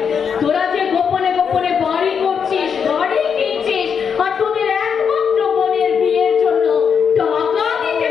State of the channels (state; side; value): quieter; right; 6.8 dB